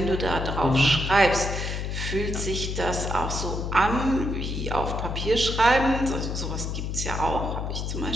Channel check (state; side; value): noise; left; hum, 3 dB below the sound